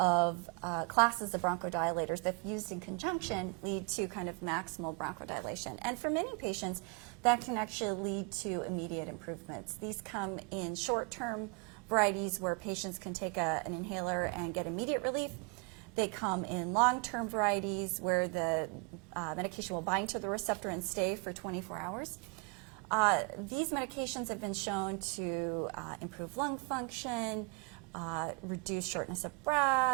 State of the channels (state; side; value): quieter; left; 32.6 dB